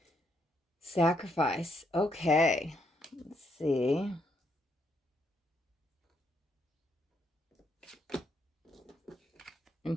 Sacrifice. Okay. Let's see.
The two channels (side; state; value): both; normal; correlation 0.75